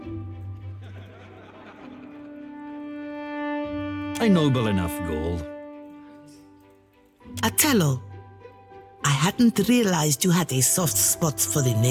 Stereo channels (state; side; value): identical; both; correlation 1.00